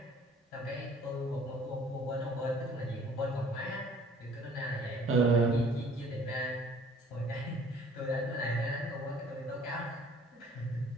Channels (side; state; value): both; normal; correlation 0.54